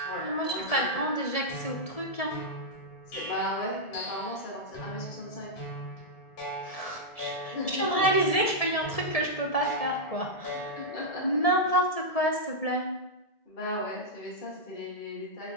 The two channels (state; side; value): late; right; 1.7 ms